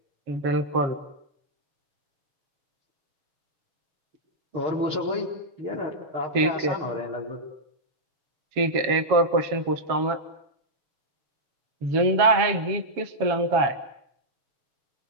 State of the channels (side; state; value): left; late; 7.3 ms